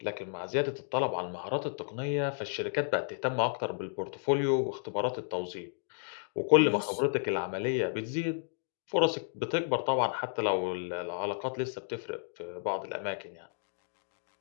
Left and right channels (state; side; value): silent; right; digital silence